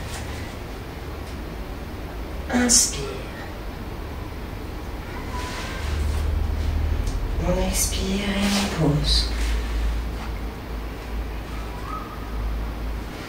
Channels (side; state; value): both; identical; correlation 1.00